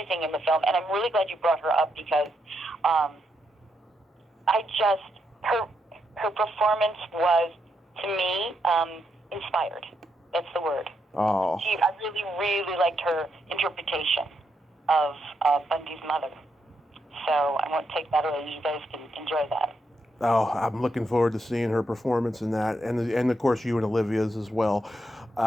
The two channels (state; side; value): normal; both; correlation 0.81